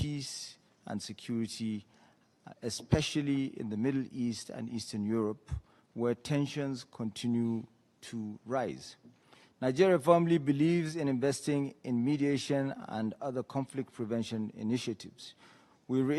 and security, especially in the Middle East and Eastern Europe, where tensions continue to rise. Nigeria firmly believes in investing in mediation and other conflict prevention initiatives. We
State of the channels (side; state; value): both; identical; correlation 1.00